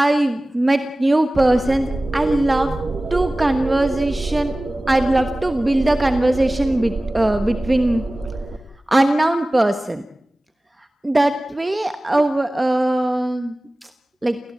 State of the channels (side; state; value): both; normal; correlation 0.97